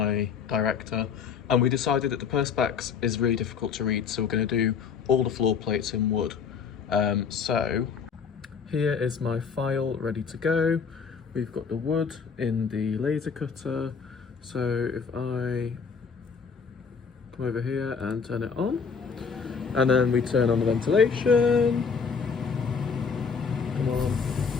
director, and we decided that the perspex is really difficult to read, so we're going to do all the floor plates in wood. So here is my file ready to go. We've got the wood in the laser cutter. So if I come over here and turn it on, and then we turn on the ventilation. Come on.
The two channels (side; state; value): right; quieter; 6.0 dB